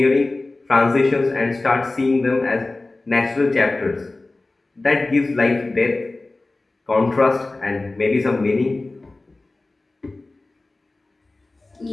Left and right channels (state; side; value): quieter; right; 3.1 dB